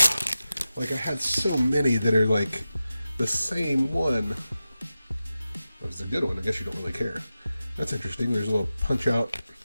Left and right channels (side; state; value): both; inverted; correlation -0.93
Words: like I had so many that are like the same one. That was a good one. I guess you don't really care. That's interesting. There's a little punch out.